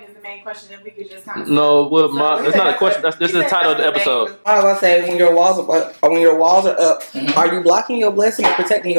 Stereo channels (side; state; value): both; inverted; correlation -1.00